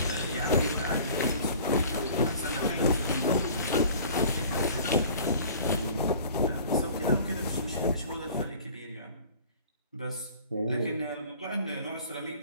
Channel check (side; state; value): both; inverted; correlation -0.46